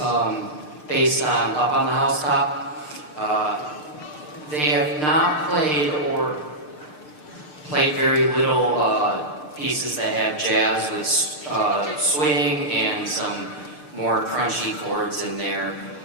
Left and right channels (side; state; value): right; late; 6.7 ms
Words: based on Up on the Housetop. They have not played or played very little pieces that have jazz with swing and some more crunchy chords in there.